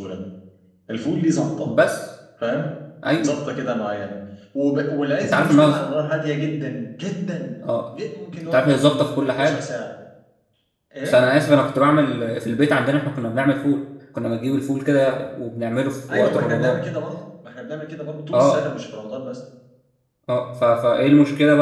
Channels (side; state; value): both; identical; correlation 1.00